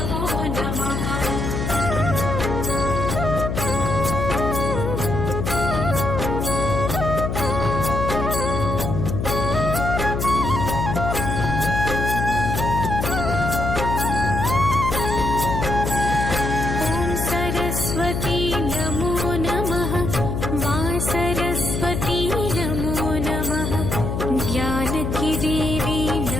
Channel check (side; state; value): left; noise; hum, 2 dB below the sound